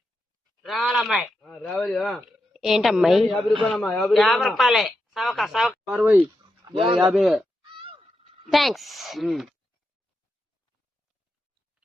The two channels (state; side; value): normal; both; correlation 0.86